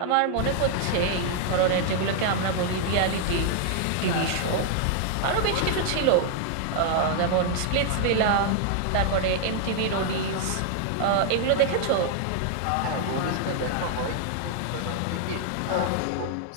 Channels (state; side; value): different; both; correlation 0.00